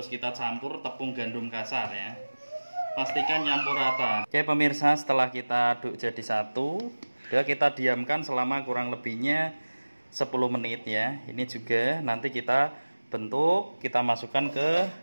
kita campur tepung gandum kasar ya. Pastikan nyampur rata. Oke pemirsa, setelah kita aduk jadi satu, udah kita diamkan selama kurang lebihnya 10 menit ya. Ini juga nanti kita bentuk, kita masukkan ke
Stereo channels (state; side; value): inverted; both; correlation -1.00